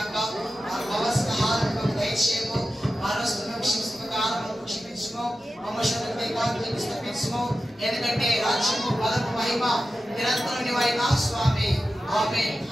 మా అవసర ఆహారం దయచేయము. మా రస్తులను క్షమించము, క్షమించము. మమ్మల్ని తప్పించము. ఎందుకంటే రాజ్యము బలము మహిమ నిరంతరం నీవైనా స్వామి. ఆమేన్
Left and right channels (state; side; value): normal; both; correlation 0.93